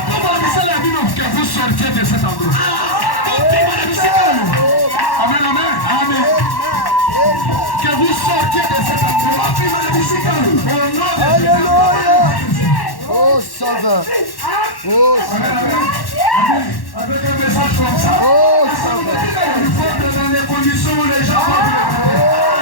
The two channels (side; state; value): right; late; 1.1 ms